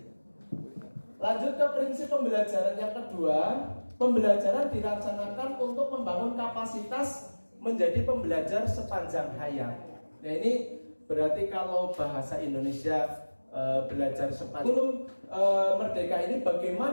Lanjut ke prinsip pembelajaran yang kedua. Pembelajaran dilaksanakan untuk membangun kapasitas menjadi pembelajar sepanjang hayat. Nah ini berarti kalau bahasa Indonesia belajar sepanjang Merdeka ini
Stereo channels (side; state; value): both; inverted; correlation -1.00